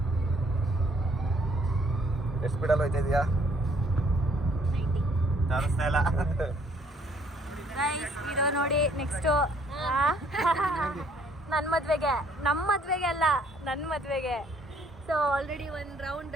ಎಷ್ಟು ಸ್ಪೀಡಲ್ಲಿ ಹೋಯ್ತಾ ಇದೆಯಾ? 90. ತೋರಿಸ್ತಾ ಇಲ್ಲ. ಇದು ನೋಡಿ ನೆಕ್ಸ್ಟು ನನ್ನ ಮದುವೆಗೆ, ನಮ್ಮ ಮದುವೆಗೆ ಅಲ್ಲ, ನನ್ನ ಮದುವೆಗೆ. ಸೊ ಆಲ್ರೆಡಿ ಒಂದು ರೌಂಡ್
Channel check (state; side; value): normal; both; correlation 0.64